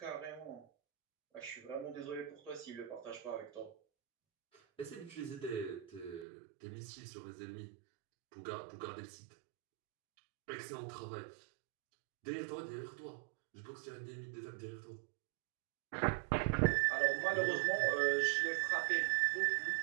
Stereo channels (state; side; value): drops out; left; at 6.2 s